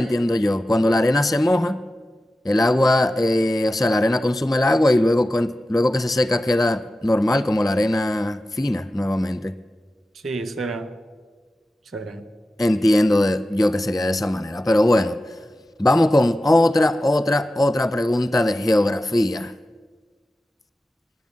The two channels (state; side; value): normal; both; correlation 0.93